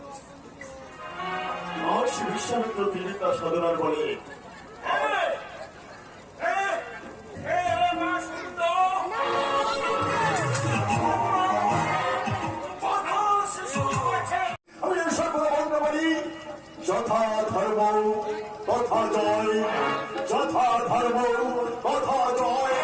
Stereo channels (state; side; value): identical; both; correlation 1.00